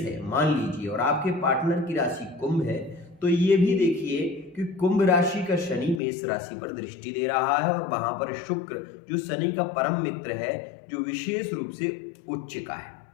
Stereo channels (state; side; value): drops out; right; at 6.0 s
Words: मान लीजिए और आपके पार्टनर की राशि कुंभ है, तो ये भी देखिए कि कुंभ राशि का शनि मेष राशि पर दृष्टि दे रहा है और वहां पर शुक्र जो शनि का परम मित्र है, जो विशेष रूप से उच्च का है।